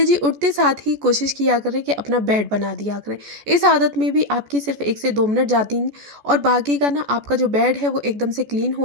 जी, उठते साथ ही कोशिश किया करें कि अपना बेड बना दिया करें। इस आदत में भी आपकी सिर्फ 1 से 2 मिनट जाती हैं, और बाकी का ना आपका जो बेड है वो एकदम से क्लीन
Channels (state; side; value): late; left; 14 ms